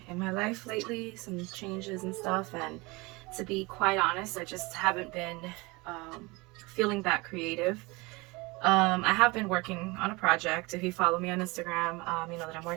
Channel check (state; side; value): quieter; left; 24.8 dB